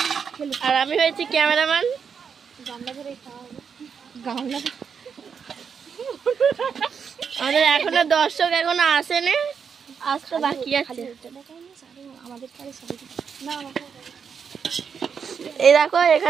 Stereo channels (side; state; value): left; quieter; 6.6 dB